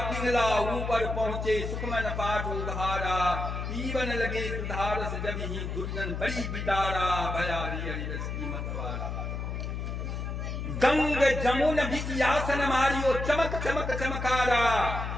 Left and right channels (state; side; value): noise; left; hum, 4 dB below the sound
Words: पिंगला ऊपर पहुंचे सुखमन पाठ उधारा, पीवन लगे सुधारस जब ही दुर्जन बड़ी बिदारा, भया जी हरिरस की मतवारा। गंग जमुन बिचियासन मारियो, चमक चमक चमकारा,